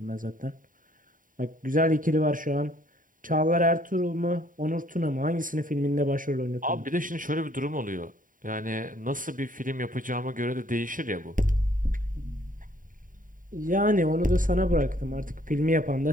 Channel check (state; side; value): late; left; 0.39 ms